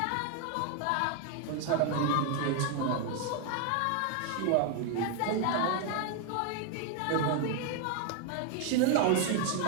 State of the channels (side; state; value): both; different; correlation 0.01